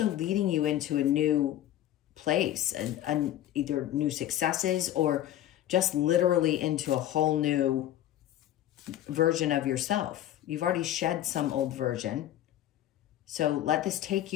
leading you into a new place, and either new successes or just literally into a whole new version of yourself. You've already shed some old version. So let this take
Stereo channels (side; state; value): right; quieter; 12.7 dB